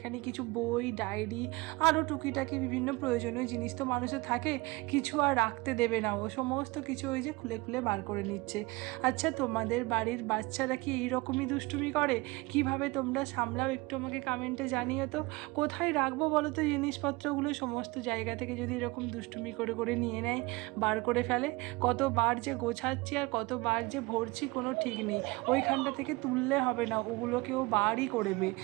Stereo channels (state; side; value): quieter; left; 23.6 dB